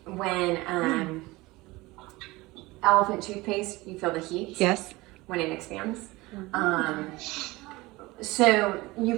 When elephant toothpaste, you feel the heat. Yes. When it expands. So you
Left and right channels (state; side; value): quieter; left; 21.2 dB